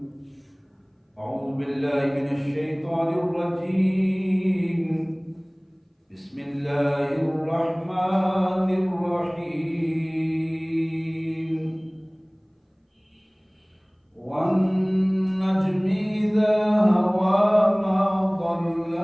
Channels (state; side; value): identical; both; correlation 1.00